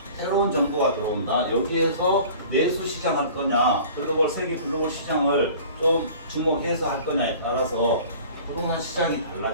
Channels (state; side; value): inverted; both; correlation -0.45